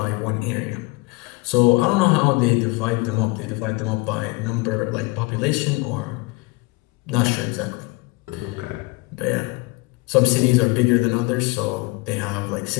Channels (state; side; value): quieter; right; 25.4 dB